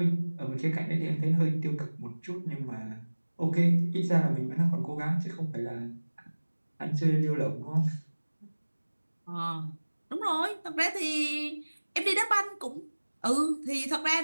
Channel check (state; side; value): inverted; both; correlation -1.00